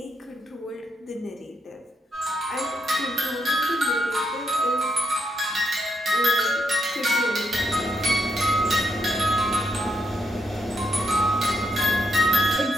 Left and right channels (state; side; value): normal; both; correlation 0.79